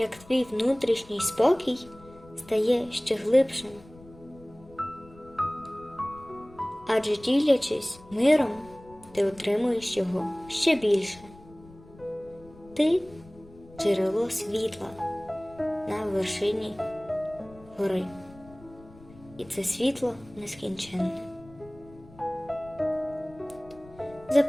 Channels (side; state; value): left; noise; rumble, 22 dB below the sound